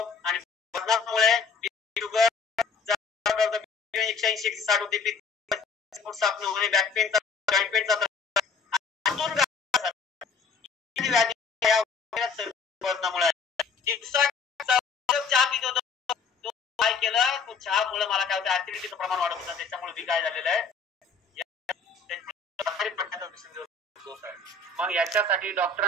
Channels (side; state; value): right; quieter; 4.9 dB